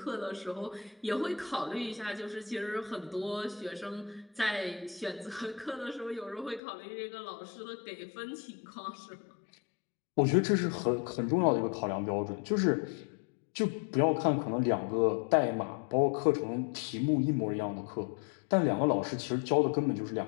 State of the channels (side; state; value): right; drops out; at 6.6 s